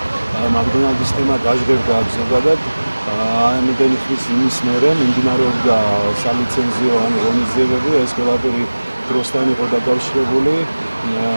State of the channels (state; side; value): inverted; both; correlation -1.00